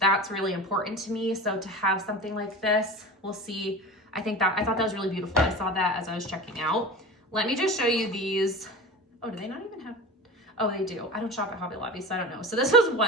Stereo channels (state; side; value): normal; both; correlation 0.31